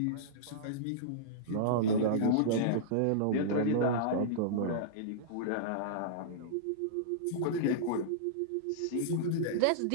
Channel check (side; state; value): both; different; correlation -0.03